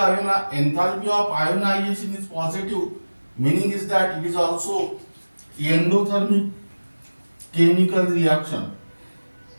of ionization is positive, meaning is that it is also endothermic chemical reaction.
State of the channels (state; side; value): inverted; both; correlation -1.00